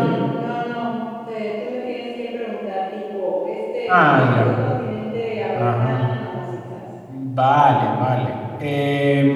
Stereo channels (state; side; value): identical; both; correlation 1.00